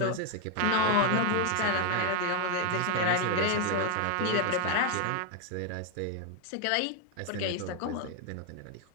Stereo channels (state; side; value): different; both; correlation 0.01